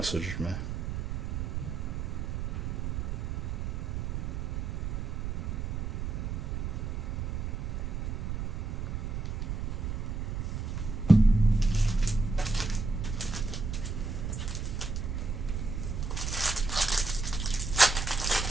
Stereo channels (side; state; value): right; noise; rumble, 2 dB below the sound